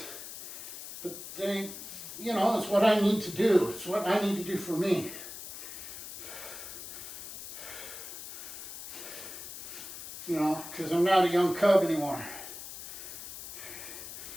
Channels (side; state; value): left; noise; hiss, 10 dB below the sound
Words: But they, you know, it's what I need to do. It's what I need to do for me. You know, because I'm not a young cub anymore.